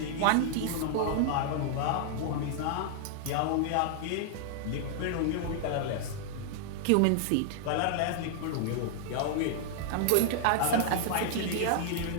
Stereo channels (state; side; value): different; both; correlation -0.01